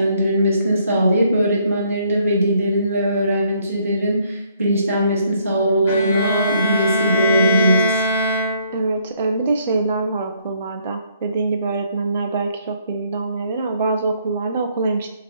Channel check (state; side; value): inverted; both; correlation -0.67